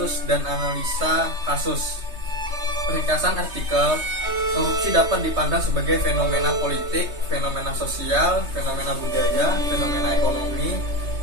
dan analisa kasus. Ringkasan artikel: korupsi dapat dipandang sebagai fenomena politik, fenomena sosial, fenomena budaya, fenomena ekonomi,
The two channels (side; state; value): left; late; 3.2 ms